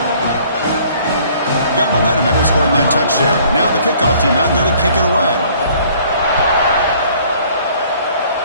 Got momentum after scoring that touchdown. Now the kickoff team out there to kick it away.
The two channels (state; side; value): inverted; both; correlation -0.57